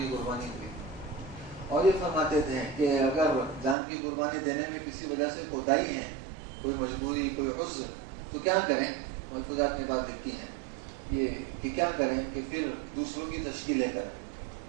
قربانی ہوئی۔ اور یہ فرماتے تھے کہ اگر جان کی قربانی دینے میں کسی وجہ سے کوتاہی ہے، کوئی مجبوری، کوئی عذر، تو کیا کریں؟ ملفوظات میں بات لکھی ہے یہ کہ کیا کریں کہ پھر دوسروں کی تشکیلیں کریں،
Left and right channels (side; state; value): left; drops out; at 3.8 s